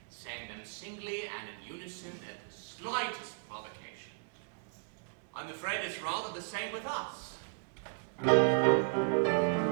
listen at the slightest provocation. I'm afraid it's rather the same with us.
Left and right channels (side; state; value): left; silent; 54 dB below the other